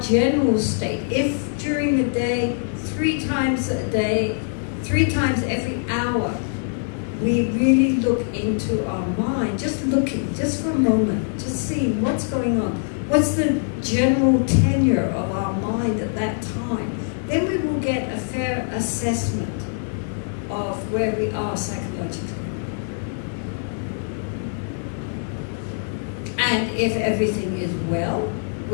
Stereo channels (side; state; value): right; silent; digital silence